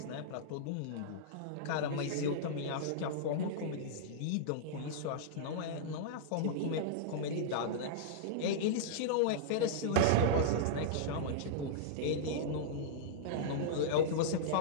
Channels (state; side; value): different; both; correlation -0.02